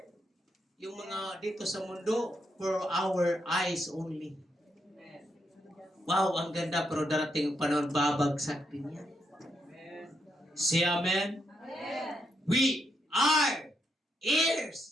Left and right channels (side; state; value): both; normal; correlation 0.80